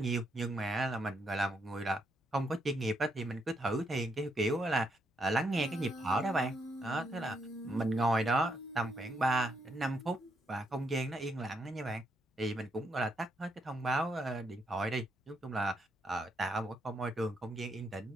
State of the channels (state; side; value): normal; both; correlation 0.77